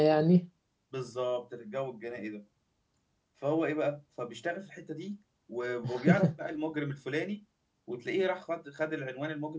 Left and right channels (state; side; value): identical; both; correlation 1.00